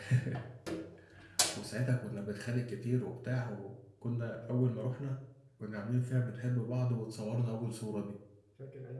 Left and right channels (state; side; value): identical; both; correlation 1.00